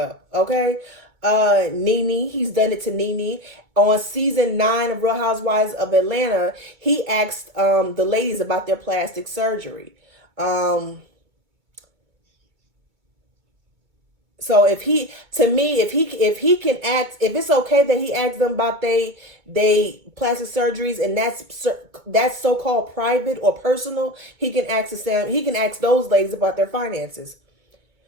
Okay? Nene, he's done it to Nene. On season 9 of Real Housewives of Atlanta, he asked the ladies about their plastic surgery. So if he, to me, if he can ask, if it's okay that he asks them about they plastic surgeries, and that's so called private or personal, he can ask them. He can ask those ladies about their finances.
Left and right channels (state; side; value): late; left; 2.2 ms